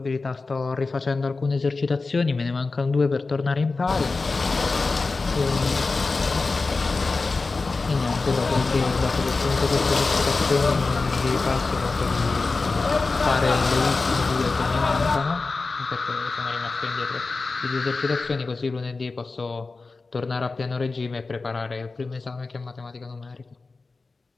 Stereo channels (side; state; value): right; quieter; 3.9 dB